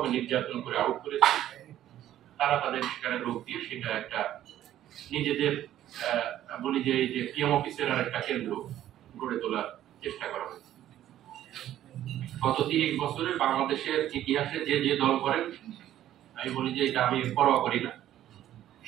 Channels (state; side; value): quieter; left; 12.4 dB